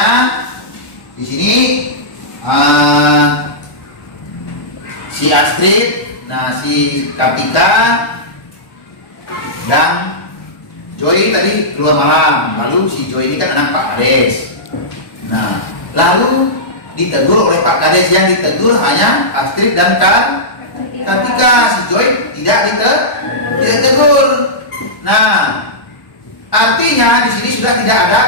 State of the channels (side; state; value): right; late; 1.1 ms